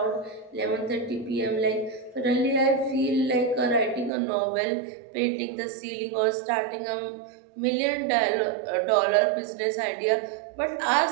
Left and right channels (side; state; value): left; drops out; at 4.1 s